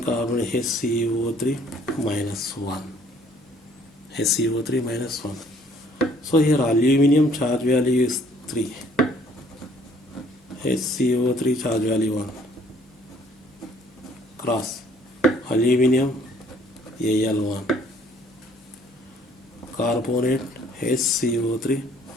HCO3 minus 1. HCO3 minus 1. So here aluminium charge value is 3. HCO3 charge value 1. Cross. Aluminium Al1. Carbonate HCO3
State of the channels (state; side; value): normal; both; correlation 0.60